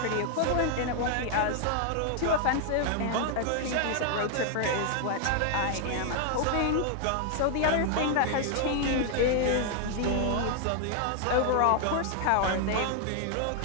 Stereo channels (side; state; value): both; different; correlation 0.00